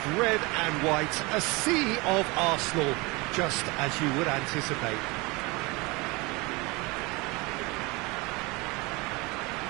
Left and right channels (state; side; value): quieter; left; 25.4 dB